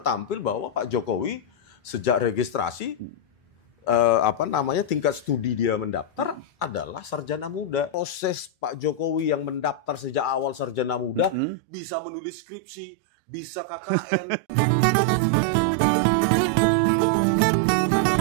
bahwa Pak Jokowi sejak registrasi tingkat studi dia mendaftar adalah sarjana muda. Proses Pak Jokowi yang mendaftar sejak awal sarjana muda bisa menulis skripsi, bisa KKN.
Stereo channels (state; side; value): drops out; left; at 11.4 s